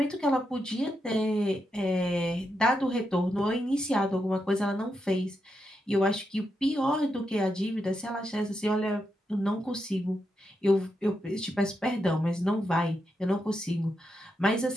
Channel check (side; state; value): both; normal; correlation 0.84